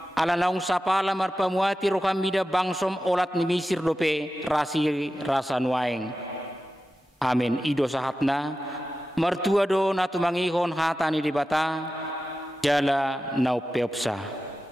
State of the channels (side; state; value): both; normal; correlation 0.93